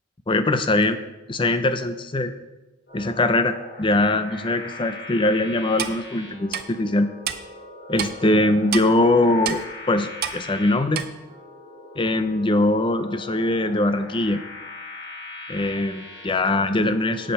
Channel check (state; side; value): normal; both; correlation 0.45